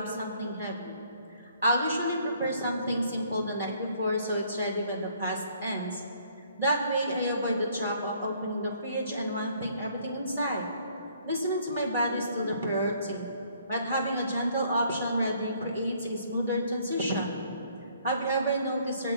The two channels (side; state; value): both; inverted; correlation -0.62